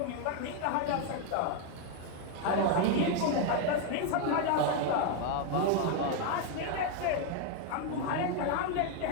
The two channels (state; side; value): different; both; correlation 0.01